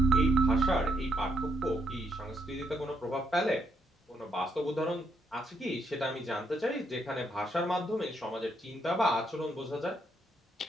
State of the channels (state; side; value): normal; both; correlation 0.76